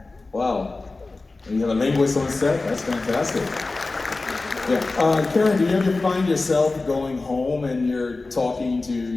Wow. And you have a linguist on set? That's fantastic. Yeah. Karen, do you ever find yourself going home and you're talking to,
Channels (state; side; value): quieter; right; 3.4 dB